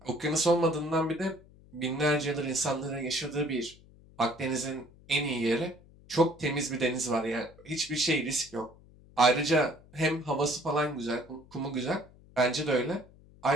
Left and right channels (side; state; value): left; noise; hum, 25 dB below the sound